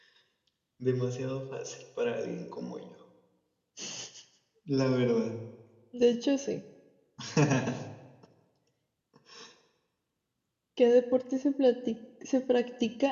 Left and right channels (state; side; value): identical; both; correlation 1.00